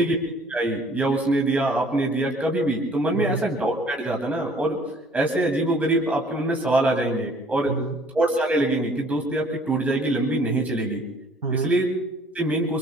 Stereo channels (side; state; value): both; normal; correlation 0.56